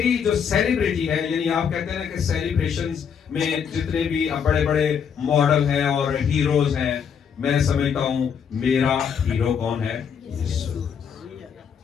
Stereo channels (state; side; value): quieter; right; 7.3 dB